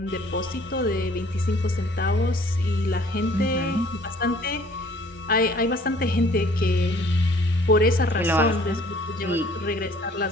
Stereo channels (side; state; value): both; normal; correlation 0.55